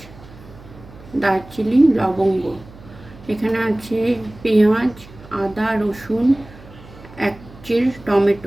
দারচিনি, লবঙ্গ। এখানে আছে পেঁয়াজ, আদা, রসুন, এক চির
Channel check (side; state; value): right; noise; hum, 20 dB below the sound